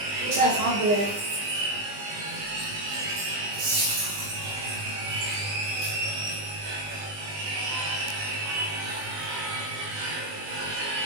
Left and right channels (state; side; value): late; left; 20 ms